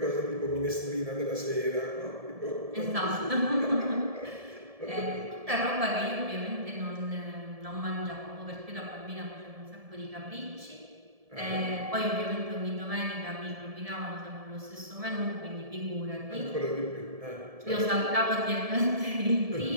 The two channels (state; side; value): late; left; 1.7 ms